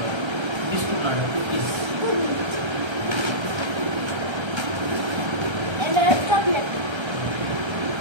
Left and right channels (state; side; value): late; left; 1.3 ms